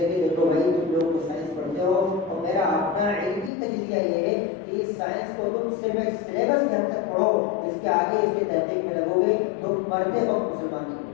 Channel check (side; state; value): right; drops out; at 3.5 s